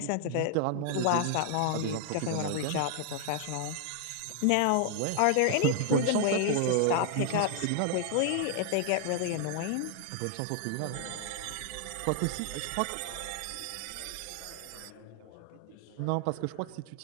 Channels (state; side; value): different; both; correlation 0.00